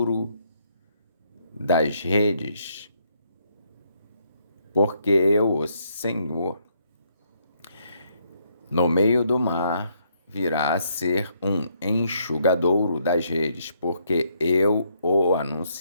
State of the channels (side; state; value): both; inverted; correlation -0.73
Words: das redes, porque eu, o Senhor, no meio do mar virá a ser um enxugadouro das redes, porque eu o